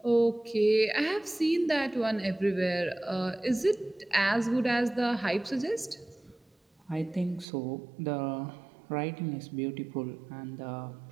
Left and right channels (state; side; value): drops out; left; at 7.5 s